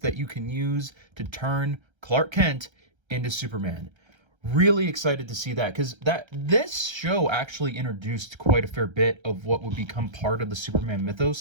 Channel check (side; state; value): left; late; 1.3 ms